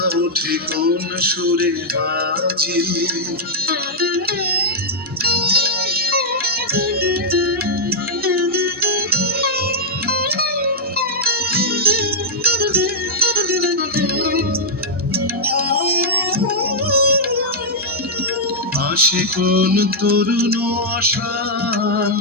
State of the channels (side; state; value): both; normal; correlation -0.06